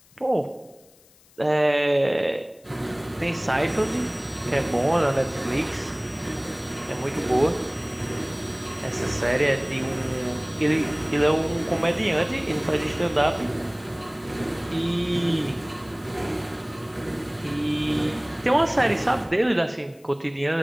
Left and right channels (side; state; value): left; noise; hiss, 28 dB below the sound